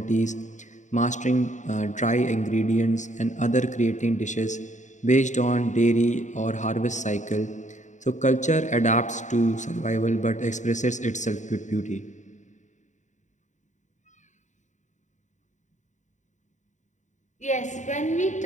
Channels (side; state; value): right; late; 0.35 ms